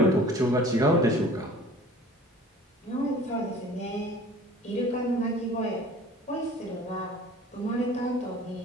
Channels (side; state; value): both; normal; correlation 0.46